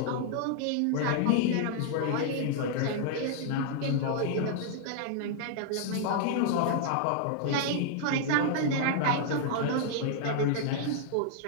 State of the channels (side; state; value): both; different; correlation -0.01